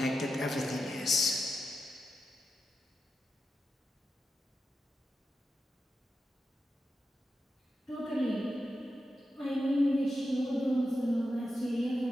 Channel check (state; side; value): normal; both; correlation 0.89